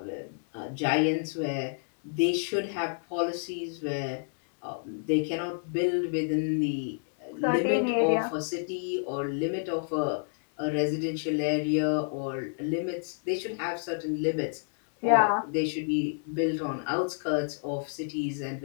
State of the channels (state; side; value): silent; right; digital silence